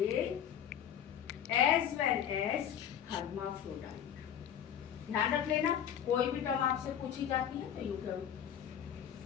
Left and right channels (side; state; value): right; quieter; 9.3 dB